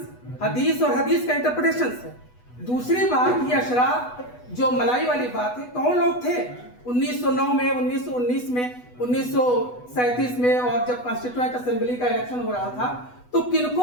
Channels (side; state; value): right; late; 8.1 ms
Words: हदीस और हदीस का इंटरप्रिटेशंस है। दूसरी बात, ये अशराफ जो मलाई वाली बात है, कौन लोग थे 1909 में, 1919 में, 1937 में, और जब कॉन्स्टिट्यूएंट असेंबली का इलेक्शन हो रहा था तो